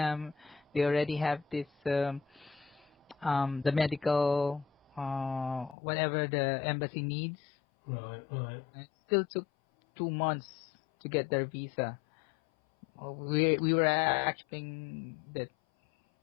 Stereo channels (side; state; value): right; drops out; at 5.8 s